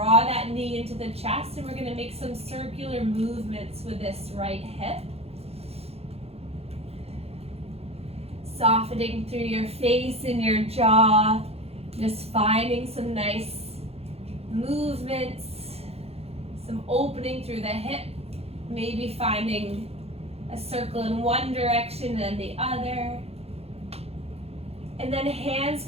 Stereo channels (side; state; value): left; late; 0.29 ms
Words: that knee into the chest, and we're gonna make some circular movements with this right hip. Softening through your face and your jaw, just finding some nice movements, some opening through the hip, maybe finding a circle in one direction and the other. And then hands